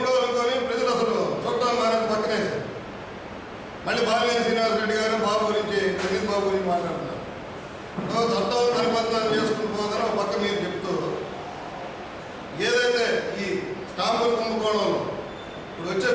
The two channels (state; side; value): identical; both; correlation 1.00